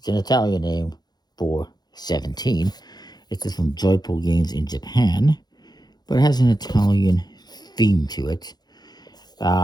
an Italian name for 17. It's from Joyful Games in Japan, but it has an Italian theme to it,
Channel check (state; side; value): late; right; 0.20 ms